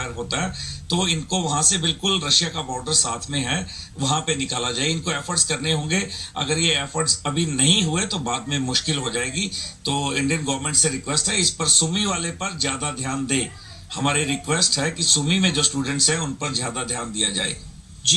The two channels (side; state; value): both; identical; correlation 1.00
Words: होता है तो इनको वहां से बिल्कुल रशिया का बॉर्डर साथ में है वहां पे निकाला जाए। इनको एफर्ट्स करने होंगे, अगर ये एफर्ट्स अभी नहीं हुए तो बाद में मुश्किल हो जाएगी। तो इंडियन गवर्नमेंट से रिक्वेस्ट है इस पर सुमी वाले पर ज्यादा ध्यान दे। हमारी रिक्वेस्ट है कि सुमी में जो स्टूडेंट्स हैं उन पर ज्यादा ध्यान दिया जाए।